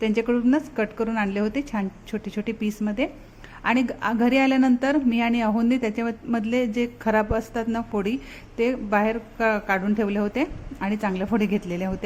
त्यांच्याकडूनच कट करून आणले होते छान छोटे छोटे पीसमध्ये. आणि घरी आल्यानंतर मी आणि अहोंनी त्याच्यामधले जे खराब असतात ना फोडी, ते बाहेर काढून ठेवले होते आणि चांगल्या फोडी घेतलेल्या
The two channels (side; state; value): both; identical; correlation 1.00